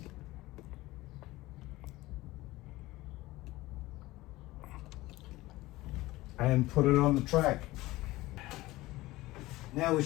And put it on the track. Now we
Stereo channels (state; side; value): quieter; right; 18.7 dB